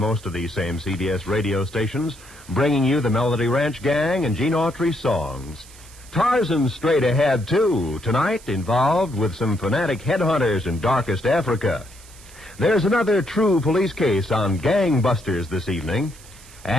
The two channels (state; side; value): noise; right; hiss, 21 dB below the sound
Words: of these same CBS radio stations, bringing you the Melody Ranch Gang and Gene Autry songs. Tarzan's straight ahead, too, tonight involved with some fanatic headhunters in darkest Africa. There's another true police case on gangbusters this evening.